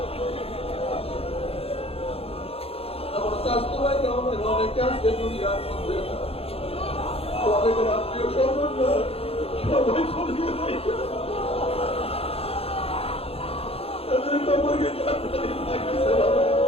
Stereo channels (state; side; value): late; right; 0.28 ms